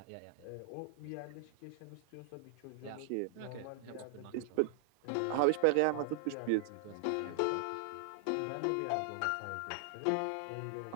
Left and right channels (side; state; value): both; different; correlation -0.01